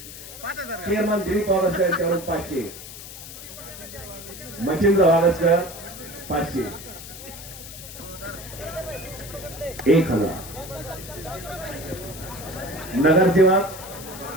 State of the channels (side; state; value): left; noise; hiss, 13 dB below the sound